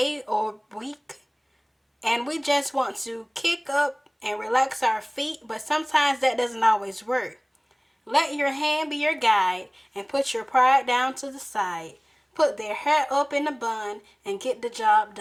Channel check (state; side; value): identical; both; correlation 1.00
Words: or week, and we just want to kick up and relax our feet, but sometimes that doesn't always work. Let your hand be your guide and put your pride down to the side. Put their hair up in a bun and get the job